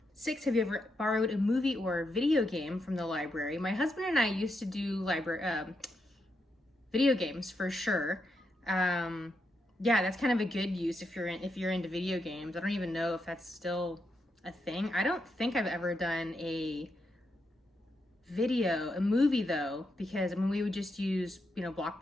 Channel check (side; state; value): both; normal; correlation 0.83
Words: 6, have you ever borrowed a movie or a video game from the library? My husband and I used to do video games for sure. Yeah, that's kind of a good use if you're into video games. I don't even know if that's still a thing. I don't think I've ever done a movie though, because we would just use